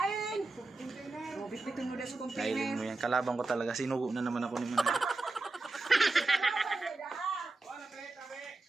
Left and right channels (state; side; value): quieter; left; 3.3 dB